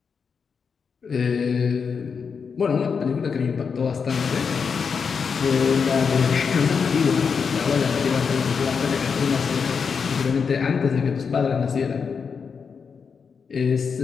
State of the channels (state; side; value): quieter; right; 5.9 dB